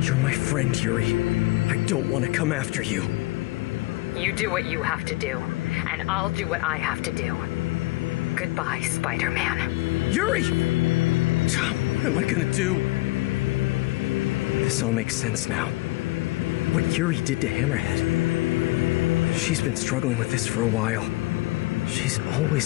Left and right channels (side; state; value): right; quieter; 21.0 dB